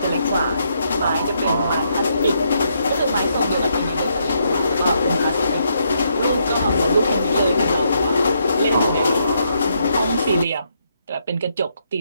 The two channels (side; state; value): both; inverted; correlation -0.76